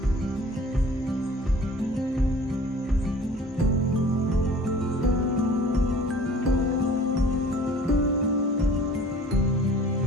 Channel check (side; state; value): both; normal; correlation 0.48